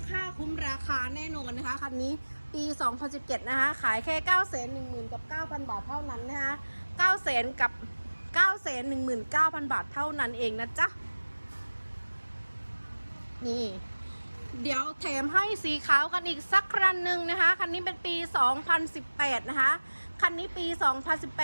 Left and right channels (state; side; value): inverted; both; correlation -1.00